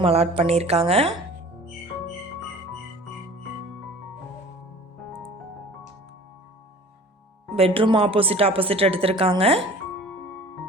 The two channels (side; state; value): both; normal; correlation 0.44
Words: அலாட் பண்ணியிருக்காங்க. பெட்ரூம் ஆப்போசிட் எடுத்திருக்காங்க.